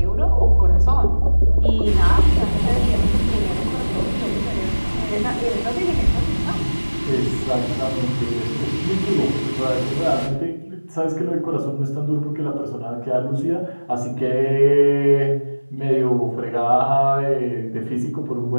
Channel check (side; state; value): both; inverted; correlation -1.00